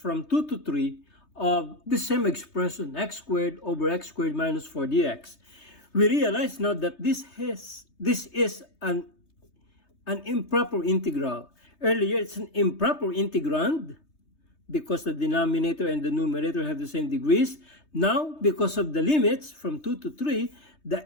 2 to 3 of the same expression, x squared over x squared minus 4 dx, we realize now that this is an improper integral. Earlier, it's an improper integrand because the denominator and the numerator have the same degrees. Now, because of the limits from 2 to 3,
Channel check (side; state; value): right; late; 3.3 ms